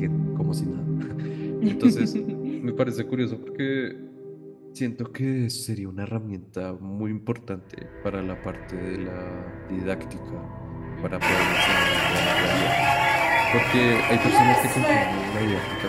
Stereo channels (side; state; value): both; identical; correlation 1.00